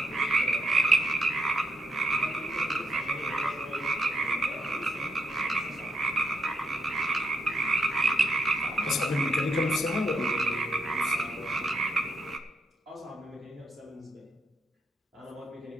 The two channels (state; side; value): normal; both; correlation 0.79